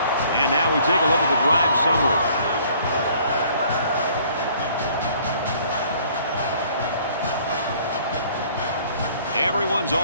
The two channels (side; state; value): both; inverted; correlation -0.57